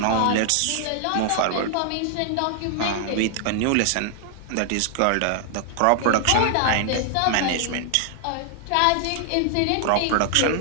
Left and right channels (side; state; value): both; different; correlation 0.00